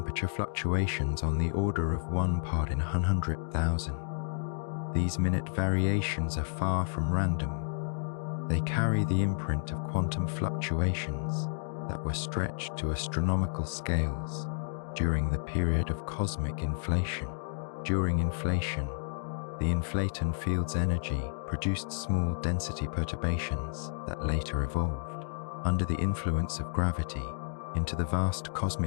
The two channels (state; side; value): silent; right; digital silence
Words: fluctuations on the order of 1 part in 100,000. These minute variations are far from random. They carry the imprint of quantum fluctuations that were stretched to astronomical scales during the period of cosmic inflation. During inflation, the inflaton field's energy produced small density perturbations that later evolved, under the influence of gravity, into the vast